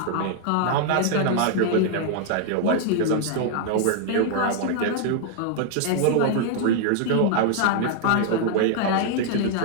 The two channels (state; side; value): different; both; correlation 0.00